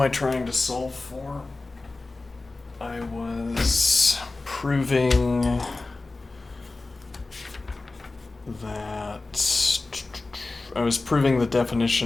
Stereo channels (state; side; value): quieter; right; 3.4 dB